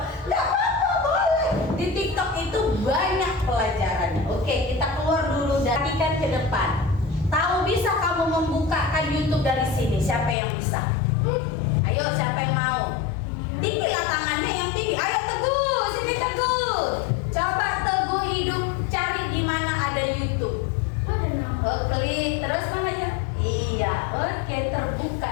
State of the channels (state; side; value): drops out; right; at 10.4 s